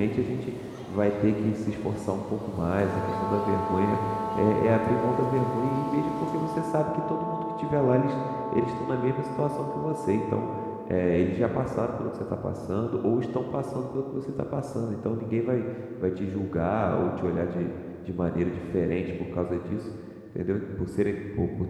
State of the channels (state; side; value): identical; both; correlation 1.00